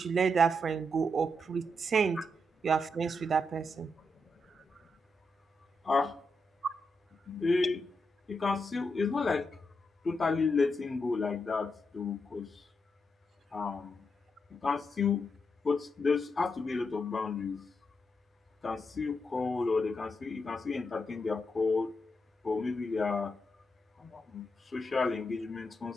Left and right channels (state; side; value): normal; both; correlation 0.83